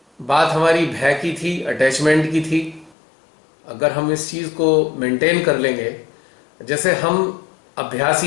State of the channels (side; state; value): right; drops out; at 3.0 s